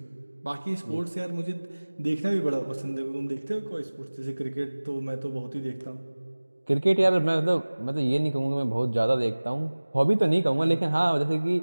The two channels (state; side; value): inverted; both; correlation -1.00